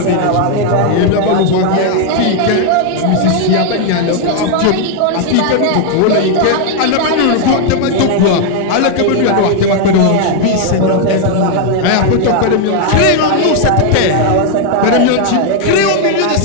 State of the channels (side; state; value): both; different; correlation 0.00